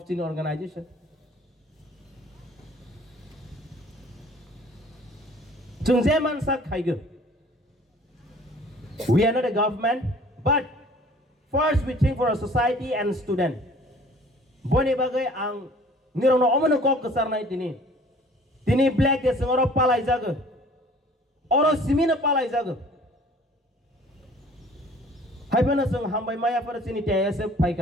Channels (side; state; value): both; normal; correlation 0.51